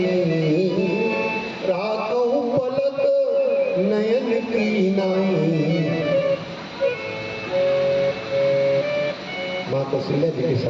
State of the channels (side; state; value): both; identical; correlation 1.00